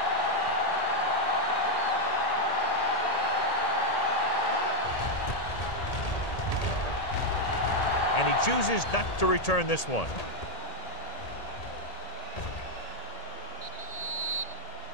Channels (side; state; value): right; late; 1.8 ms